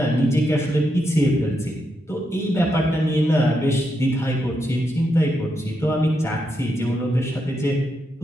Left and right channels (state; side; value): normal; both; correlation 0.82